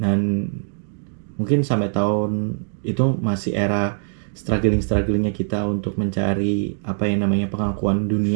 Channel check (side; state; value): left; silent; digital silence